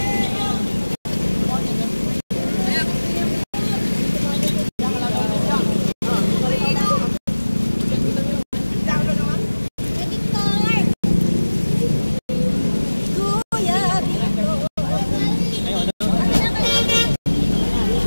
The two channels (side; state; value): both; inverted; correlation -1.00